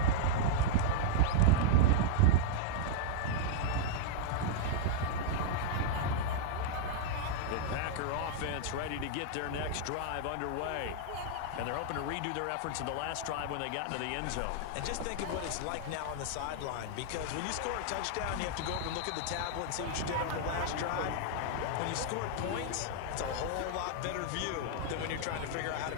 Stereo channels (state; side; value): different; both; correlation -0.01